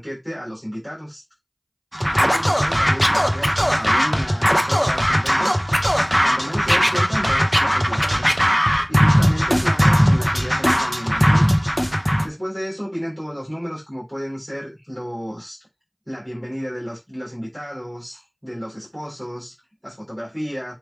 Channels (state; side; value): identical; both; correlation 1.00